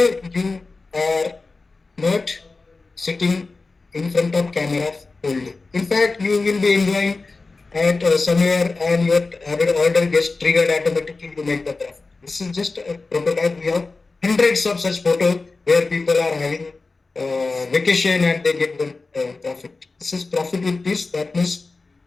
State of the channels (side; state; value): right; quieter; 3.8 dB